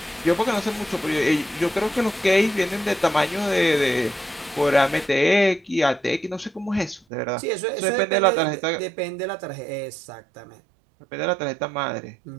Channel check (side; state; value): left; drops out; at 7.0 s